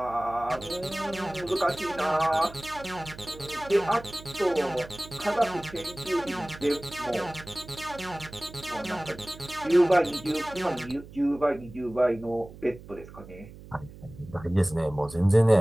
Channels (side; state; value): right; noise; hum, 17 dB below the sound